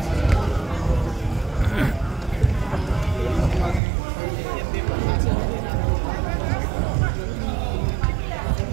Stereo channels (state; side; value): drops out; left; at 3.8 s